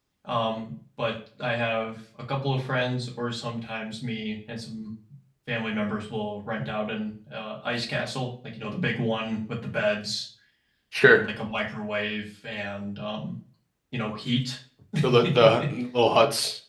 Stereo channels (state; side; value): identical; both; correlation 1.00